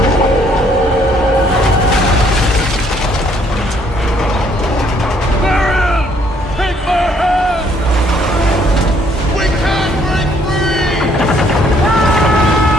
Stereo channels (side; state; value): both; normal; correlation 0.66